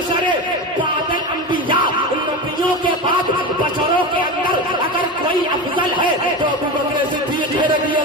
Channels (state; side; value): normal; both; correlation 0.23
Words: بعد الانبیاء، نبیوں کے بعد بشروں کے اندر اگر کوئی افضل ہے تو ابو بکر صدیق رضی